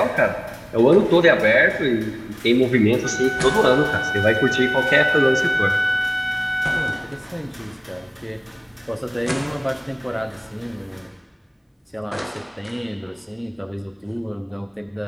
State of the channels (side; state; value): both; identical; correlation 1.00